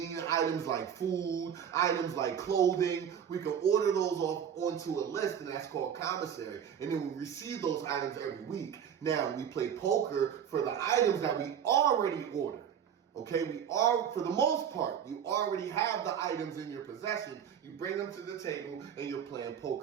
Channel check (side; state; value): left; quieter; 8.5 dB